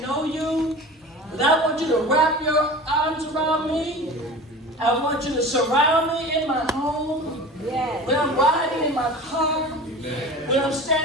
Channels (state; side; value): normal; both; correlation 0.36